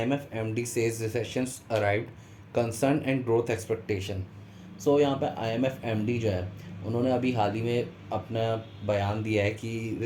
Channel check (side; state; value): both; identical; correlation 1.00